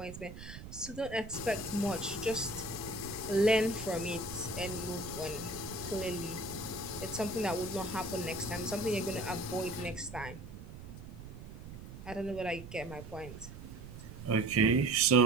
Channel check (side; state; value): right; noise; rumble, 13 dB below the sound